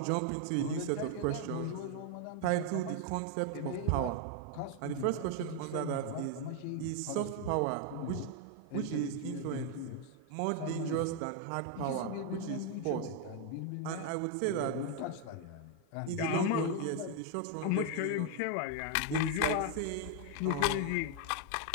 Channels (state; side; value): different; both; correlation 0.00